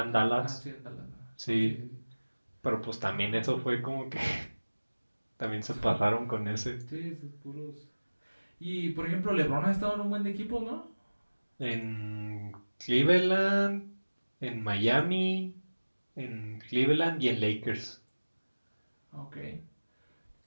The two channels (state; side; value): inverted; both; correlation -1.00